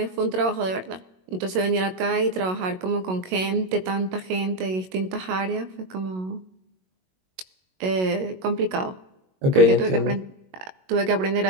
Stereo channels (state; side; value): late; left; 22 ms